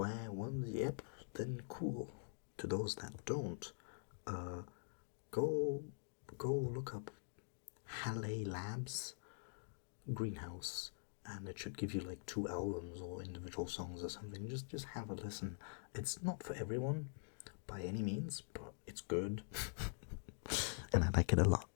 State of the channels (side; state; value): right; silent; digital silence